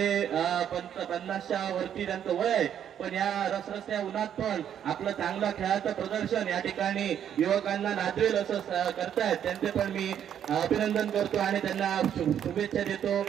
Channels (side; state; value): left; quieter; 9.4 dB